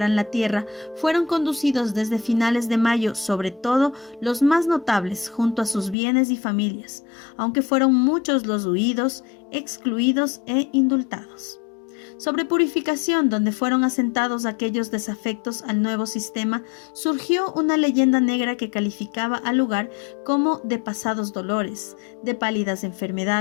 la tierra, fueron conducidos desde finales de mayo, sobre todo los más notables, junto a sus bienes y familias, aunque fueron muchos los huidos, excluidos e indultados. Sobre Purificación, donde fueron asentados aquellos desafectos al nuevo sistema, surgió una leyenda negra que calificaba al lugar como de pasados dolores, de pálidas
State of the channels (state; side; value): drops out; right; at 6.0 s